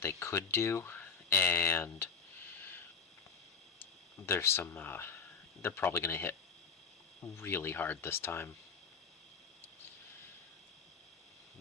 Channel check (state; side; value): quieter; right; 5.6 dB